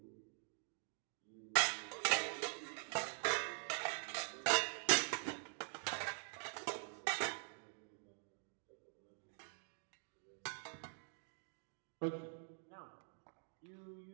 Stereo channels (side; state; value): left; silent; digital silence